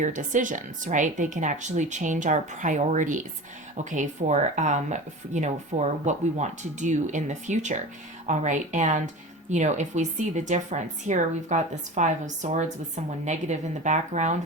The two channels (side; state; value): both; normal; correlation 0.32